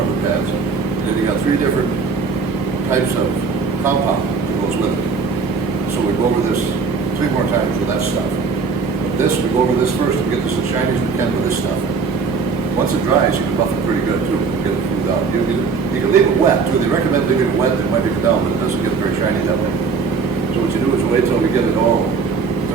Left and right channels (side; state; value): left; quieter; 4.9 dB